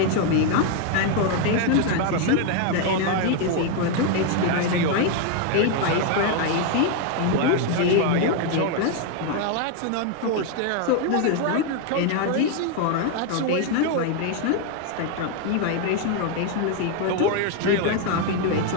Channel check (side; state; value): both; different; correlation 0.01